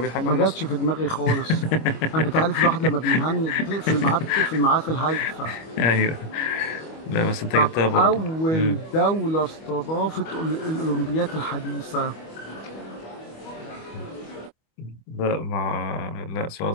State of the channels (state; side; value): late; right; 25 ms